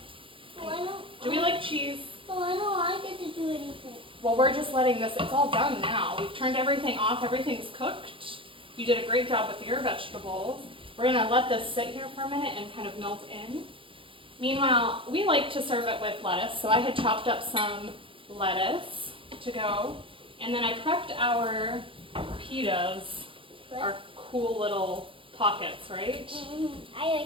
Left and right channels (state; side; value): late; left; 0.25 ms